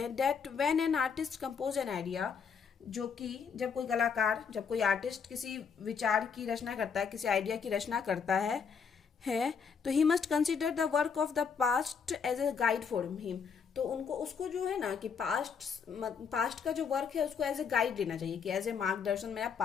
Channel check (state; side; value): quieter; right; 6.3 dB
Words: that when an artist composes an idea, जो कि जब कोई कलाकार, जब कोई आर्टिस्ट किसी विचार की रचना करता है, किसी आइडिया की रचना करता है तो he must consider the work of the past as a guide for him, तो उनको उसको जो है ना कि पास्ट का जो वर्क है उसको एज ए गाइड लेना चाहिए, कि एज ए मार्गदर्शन, मेरा